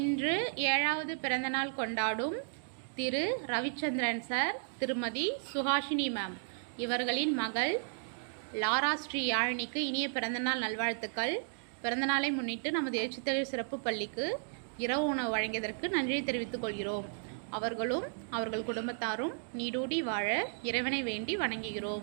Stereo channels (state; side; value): silent; left; digital silence